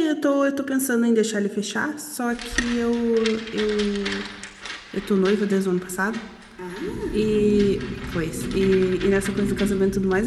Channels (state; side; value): identical; both; correlation 1.00